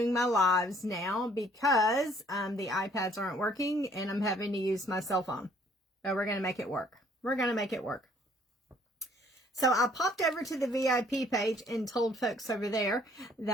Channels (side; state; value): both; normal; correlation 0.61